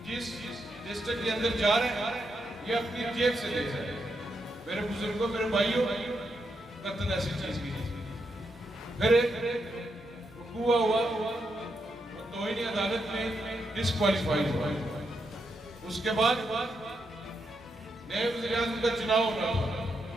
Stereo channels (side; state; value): both; normal; correlation 0.82